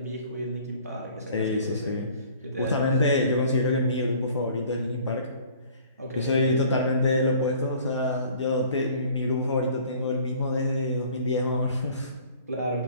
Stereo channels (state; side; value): inverted; both; correlation -0.52